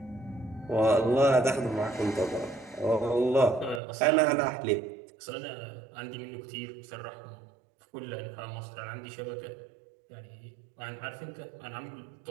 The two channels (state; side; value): drops out; left; at 3.8 s